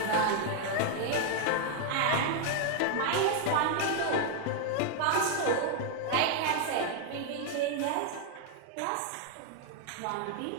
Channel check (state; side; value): different; both; correlation 0.00